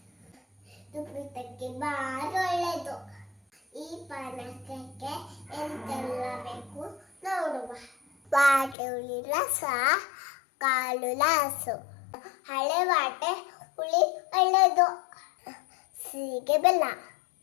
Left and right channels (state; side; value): drops out; right; at 8.8 s